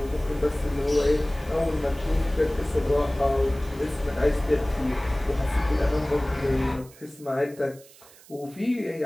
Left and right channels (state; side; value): noise; right; hiss, 23 dB below the sound